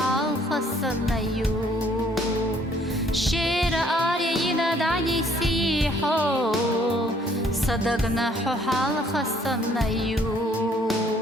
صنا يو شير آري يناد عني سيحو صدقنا حو حلقة صنا يو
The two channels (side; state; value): both; normal; correlation 0.62